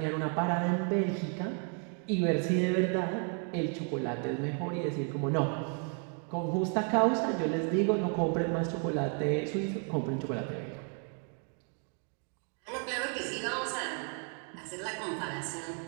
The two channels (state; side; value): quieter; left; 39.8 dB